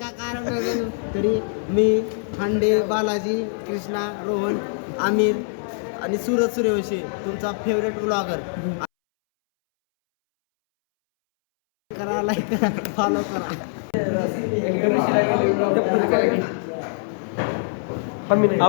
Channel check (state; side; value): silent; right; 63 dB below the other